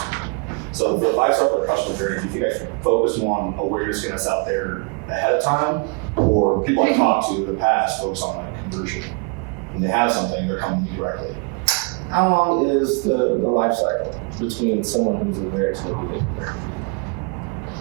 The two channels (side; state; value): left; quieter; 34.3 dB